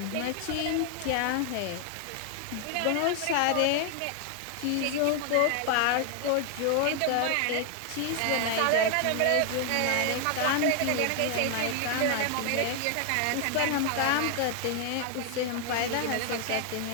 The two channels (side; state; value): both; different; correlation 0.00